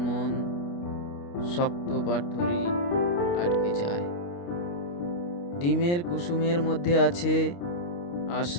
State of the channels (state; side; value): late; right; 29 ms